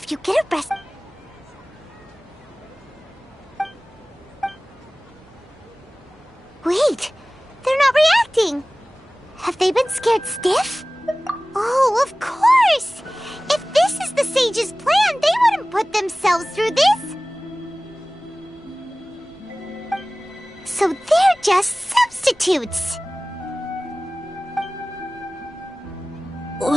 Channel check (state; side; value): normal; both; correlation 0.98